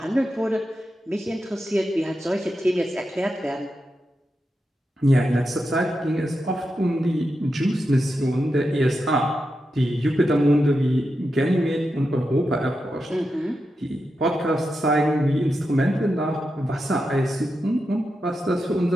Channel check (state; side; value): normal; both; correlation 0.88